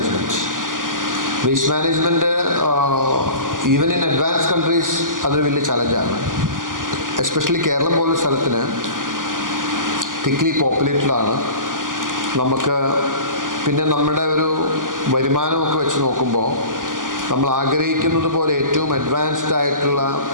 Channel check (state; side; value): late; left; 0.89 ms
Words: Waste management even in advance countries അതൊരു വലിയ ചലഞ്ചാണ്. എസ്പെഷ്യലി കേരളം പോലൊരു സ്ഥലത്തിന് തിക്ലി പോപ്പുലേറ്റഡാണ്. നമുക്ക് പിന്നെ നമ്മുടെ ഒരു വരുമാനമൊക്കെ വെച്ച് നോക്കുമ്പോൾ നമ്മൾ ആഗ്രഹിക്കുന്നത് പോലെ ഏറ്റവും അഡ്വാൻസ്ഡ് ആയിട്ടുള്ള